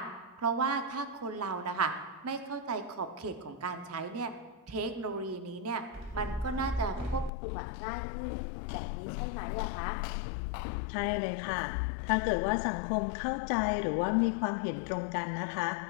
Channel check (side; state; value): right; drops out; at 7.3 s